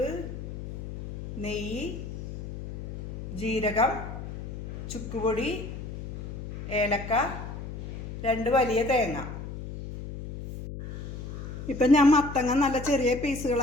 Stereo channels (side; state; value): left; noise; hum, 9 dB below the sound